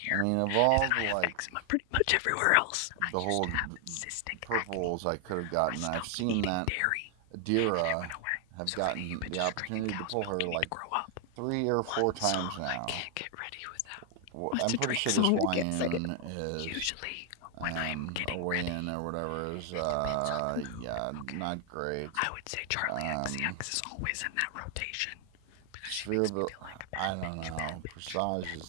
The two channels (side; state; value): both; different; correlation 0.00